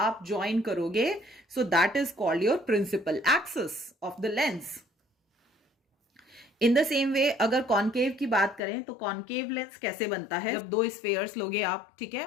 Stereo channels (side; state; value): right; drops out; at 8.6 s